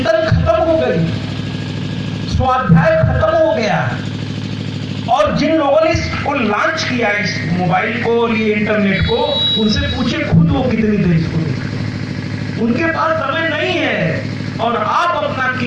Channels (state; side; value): identical; both; correlation 1.00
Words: खत्म हो गई, स्वाध्याय खत्म हो गया। और जिन लोगों ने इसको लॉन्च किया, इस मोबाइल को, ये इंटरनेट को, उनसे पूछे खुद वो कितनी देर इसको देखते हैं। उनके पास समय नहीं है और आप अपना